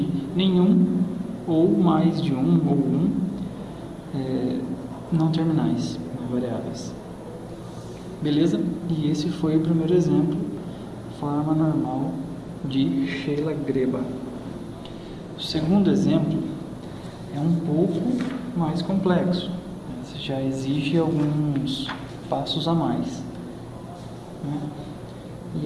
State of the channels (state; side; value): identical; both; correlation 1.00